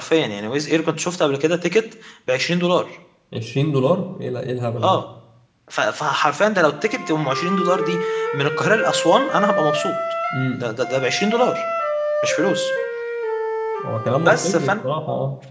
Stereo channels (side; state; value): both; identical; correlation 1.00